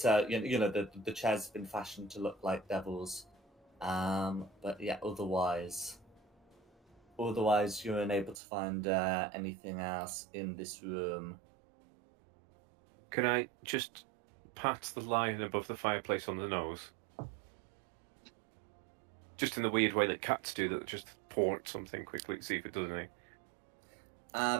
the chairs have been fashioned to look like devils, but yeah, otherwise you're unable to find anything else in this room. Can I just pat the lion above the fireplace on the nose? Just in the weird way that cats do, that just port something quickly to see if it does anything.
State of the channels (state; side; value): drops out; left; at 8.3 s